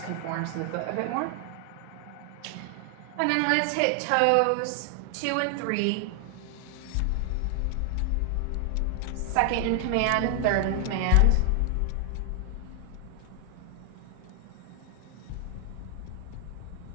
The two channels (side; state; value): both; different; correlation 0.00